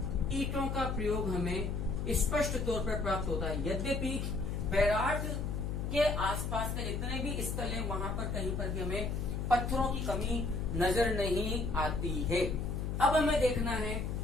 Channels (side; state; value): left; noise; hum, 2 dB below the sound